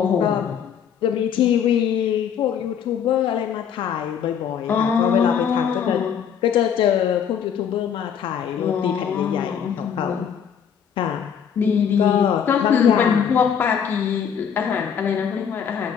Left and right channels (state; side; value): quieter; right; 7.9 dB